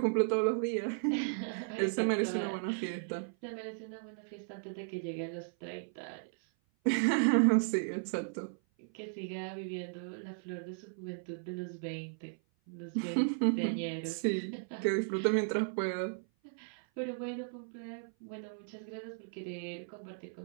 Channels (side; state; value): left; silent; 54 dB below the other